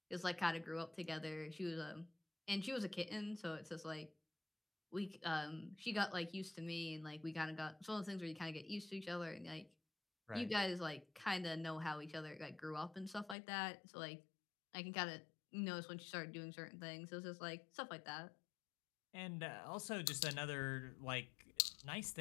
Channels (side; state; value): right; drops out; at 13.4 s